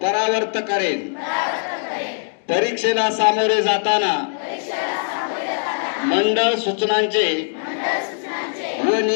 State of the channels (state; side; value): silent; right; 65 dB below the other